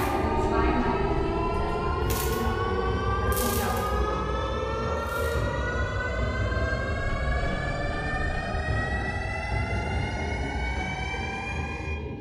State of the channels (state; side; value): identical; both; correlation 1.00